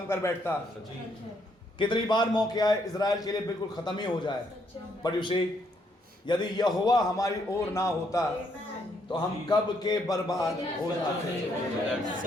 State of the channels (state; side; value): normal; both; correlation 0.73